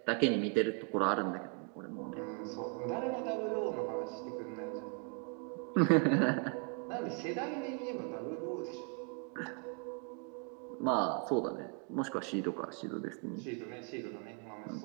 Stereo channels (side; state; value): left; quieter; 36.5 dB